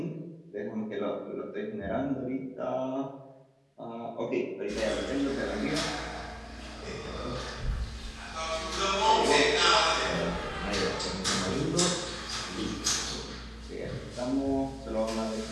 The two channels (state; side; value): identical; both; correlation 1.00